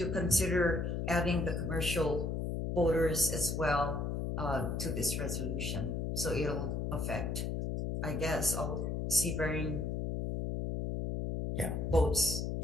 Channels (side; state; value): left; noise; hum, 1 dB below the sound